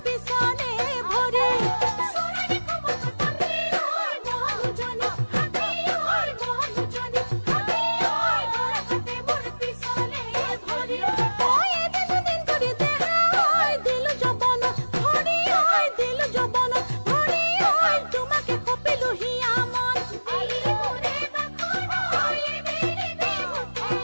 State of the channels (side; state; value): both; inverted; correlation -1.00